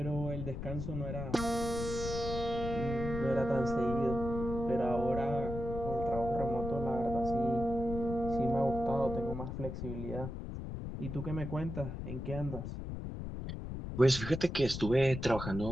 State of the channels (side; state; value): left; noise; rumble, 6 dB below the sound